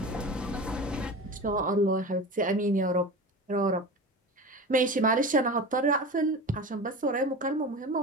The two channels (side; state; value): both; normal; correlation 0.31